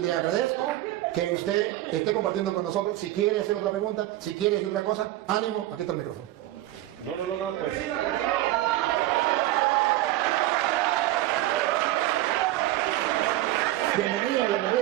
agradezco que usted esté compartiendo con nosotros. Si quiere hacer otra pregunta, si quiere decir otra cosa, ánimo, aquí está el micrófono. No, pues. Bienvenido.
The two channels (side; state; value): left; quieter; 15.4 dB